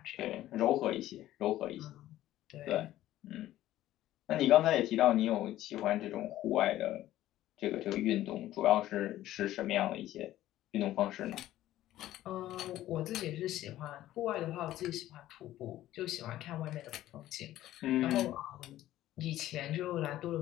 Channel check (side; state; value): right; quieter; 14.2 dB